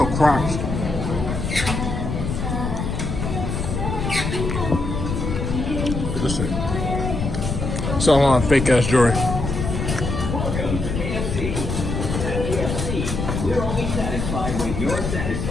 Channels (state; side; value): noise; left; rumble, 3 dB below the sound